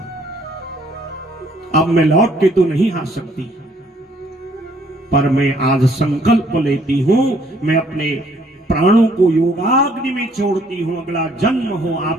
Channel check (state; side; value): normal; both; correlation 0.63